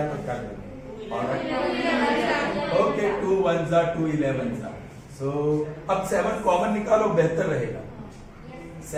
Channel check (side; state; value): both; identical; correlation 1.00